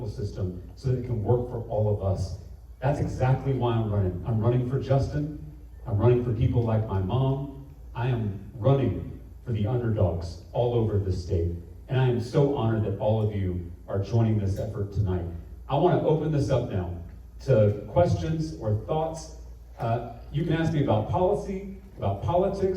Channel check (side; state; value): both; identical; correlation 1.00